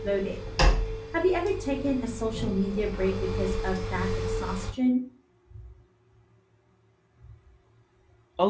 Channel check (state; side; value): identical; both; correlation 1.00